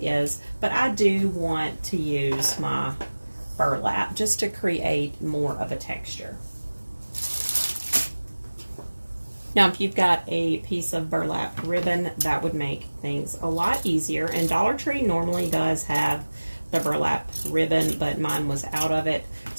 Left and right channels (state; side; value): inverted; both; correlation -1.00